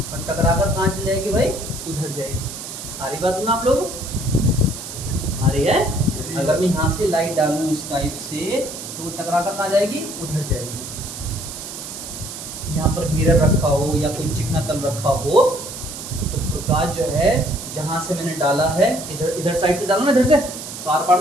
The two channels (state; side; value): noise; right; hiss, 10 dB below the sound